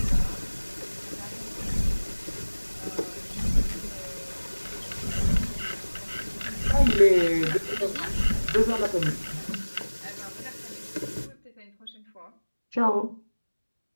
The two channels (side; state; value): both; inverted; correlation -1.00